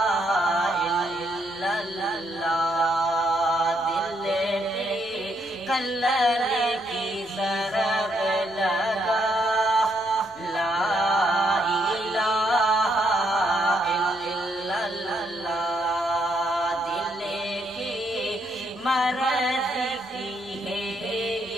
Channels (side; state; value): both; normal; correlation 0.75